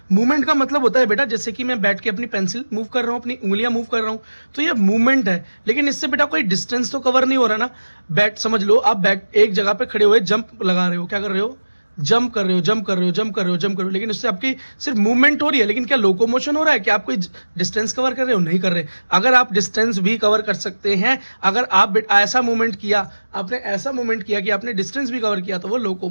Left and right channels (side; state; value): both; inverted; correlation -1.00